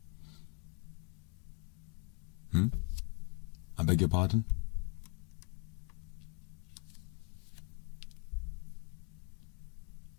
I beg your pardon?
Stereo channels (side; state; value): right; quieter; 36.7 dB